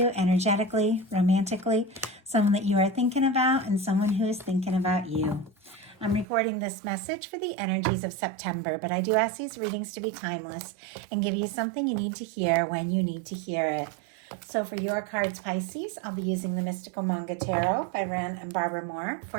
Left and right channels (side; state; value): left; drops out; at 6.2 s